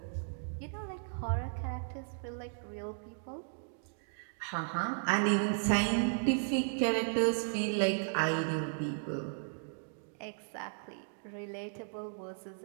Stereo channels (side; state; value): left; silent; digital silence